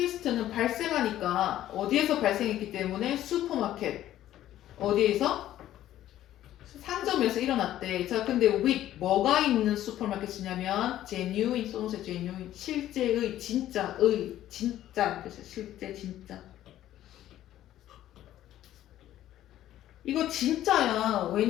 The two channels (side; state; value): right; quieter; 13.0 dB